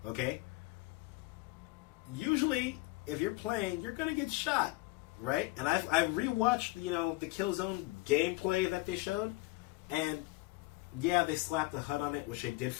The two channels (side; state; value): right; quieter; 21.3 dB